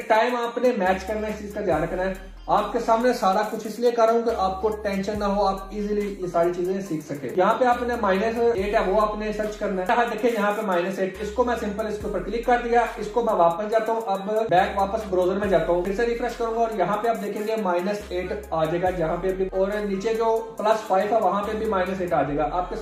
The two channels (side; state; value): both; identical; correlation 1.00